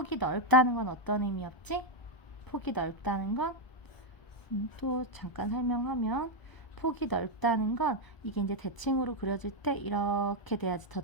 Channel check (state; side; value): late; right; 1.0 ms